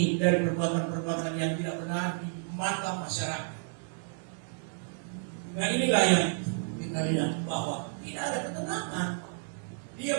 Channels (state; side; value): silent; left; 57 dB below the other